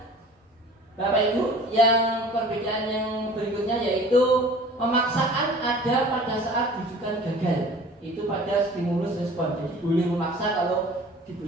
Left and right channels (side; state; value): both; normal; correlation 0.45